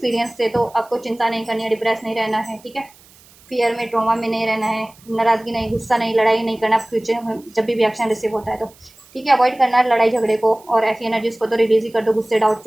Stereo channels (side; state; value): right; noise; hiss, 27 dB below the sound